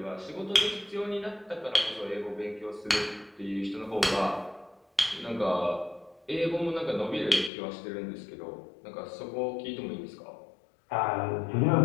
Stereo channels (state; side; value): drops out; right; at 7.5 s